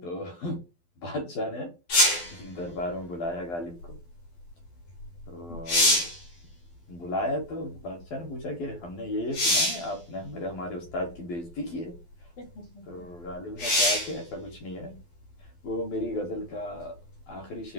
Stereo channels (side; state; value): right; late; 12 ms